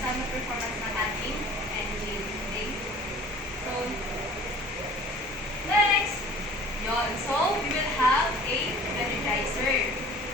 ng performance ng ating engine. Okay? So, next, yon. So, we will have a energizer.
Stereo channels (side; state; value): both; normal; correlation 0.47